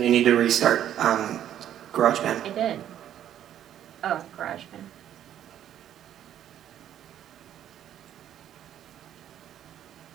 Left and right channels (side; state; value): left; quieter; 10.8 dB